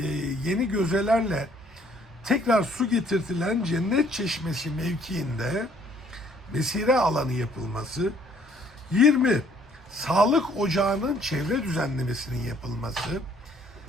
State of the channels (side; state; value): both; normal; correlation 0.62